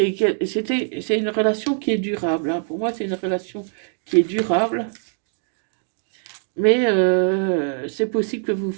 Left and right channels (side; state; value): left; silent; 64 dB below the other